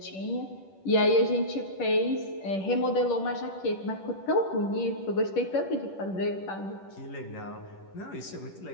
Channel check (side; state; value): right; late; 10 ms